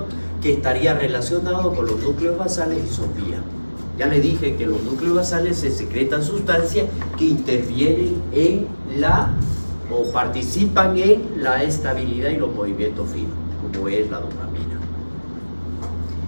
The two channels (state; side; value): inverted; both; correlation -1.00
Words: que estaría relacionado con los núcleos basales y sopía. Ya le dije que los núcleos basales se secretan sustancias que intervienen en o participan en la estabilidad y los movimientos finos, como es la dopamina.